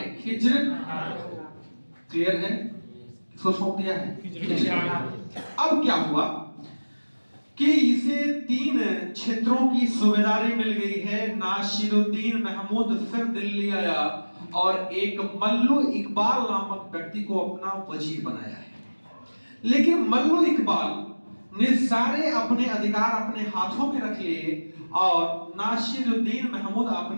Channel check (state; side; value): inverted; both; correlation -1.00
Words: खिज्र। क्लियर है, किसको सौंप दिया है, खिज्र। अब क्या हुआ कि इसे 3 क्षेत्रों की सूबेदारी मिल गई है। नासिरुद्दीन महमूद फिर दिल्ली आया और एक मल्लू इकबाल नामक व्यक्ति को अपना वजीर बनाया है। लेकिन मल्लू इकबाल ने सारे अपने अधिकार अपने हाथों में रख लिए और नासिरुद्दीन महमूद